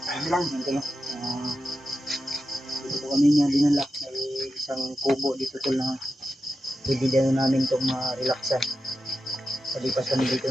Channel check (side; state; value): both; normal; correlation 0.90